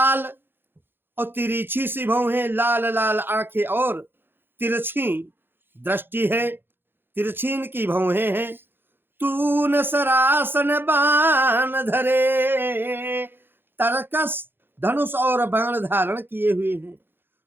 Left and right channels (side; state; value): left; late; 0.10 ms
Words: और तिरछी सी भौं है, लाल लाल आंखें और तिरछी दृष्टि है, तिरछी इनकी भौहें हैं। तून सरासन बाण धरे, तरकस धनुष और बाण धारण किए हुए हैं।